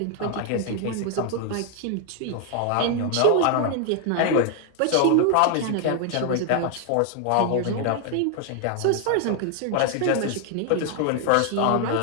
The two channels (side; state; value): both; different; correlation 0.00